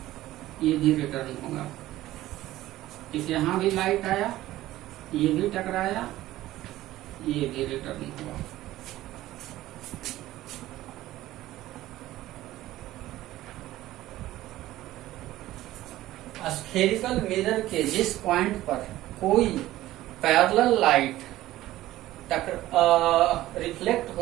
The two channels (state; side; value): quieter; left; 15.4 dB